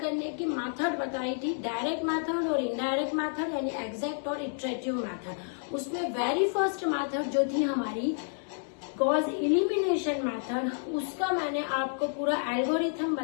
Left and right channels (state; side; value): silent; right; digital silence